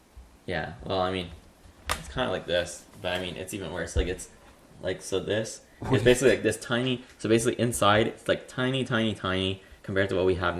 Yeah. Well, I mean, it's kind of like this, but I mean, it's even worse. Like it's like so. This is basically like this tiny. So basically, inside it's like tiny, tiny, tiny compared to what we have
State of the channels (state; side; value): identical; both; correlation 1.00